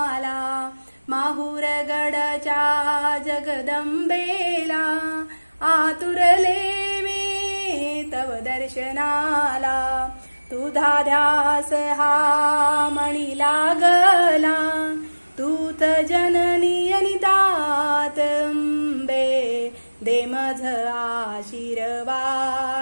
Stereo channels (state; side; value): inverted; both; correlation -1.00